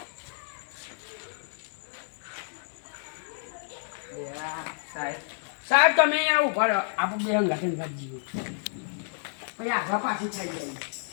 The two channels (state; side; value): silent; right; digital silence